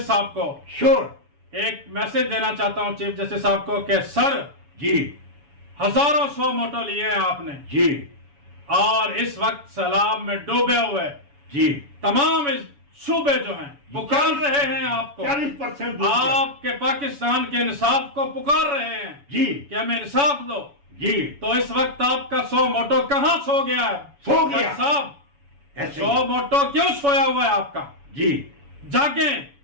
صاحب کو. شور. ایک میسج دینا چاہتا ہوں چیف جسٹس صاحب کو کہ سر, جی, ہزاروں سو موٹو لیے ہیں آپ نے, جی, اور اس وقت سیلاب میں ڈوبے ہوئے جی, تمام صوبے جو ہیں پکار رہے ہیں آپ کو, 40% آپ کے پاکستان کے انصاف کو پکار رہے ہیں جی, کہ ہمیں انصاف دو. جی, تو اس وقت آپ کا 100 موٹو کہاں سو گیا ہے؟ سو گیا جج صاحب, ایسے 100 موٹو کیوں سویا ہوا ہے آپ کا؟ جی, جاگیں,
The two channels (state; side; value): late; left; 7.0 ms